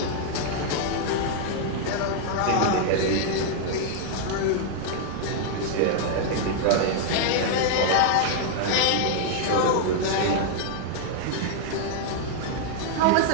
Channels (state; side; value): different; both; correlation 0.00